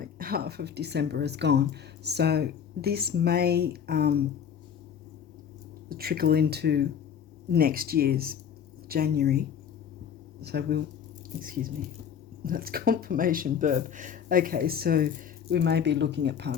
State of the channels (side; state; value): right; quieter; 8.1 dB